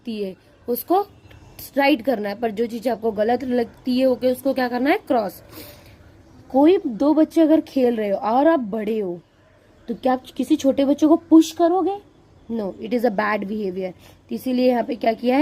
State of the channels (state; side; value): identical; both; correlation 1.00